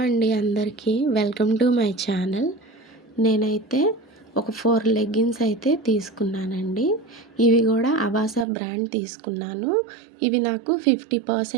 అండి అందరికీ welcome to my channel. నేనైతే ఒక 4 లెగ్గిన్స్ అయితే తీసుకున్నానండి. ఇవి కూడా అవాసా బ్రాండ్ తీసుకున్నాను. ఇవి నాకు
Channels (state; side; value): drops out; left; at 8.5 s